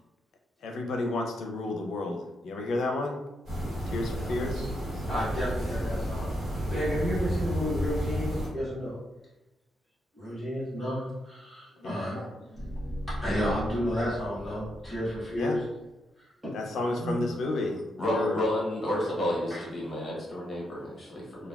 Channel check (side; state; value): both; normal; correlation 0.81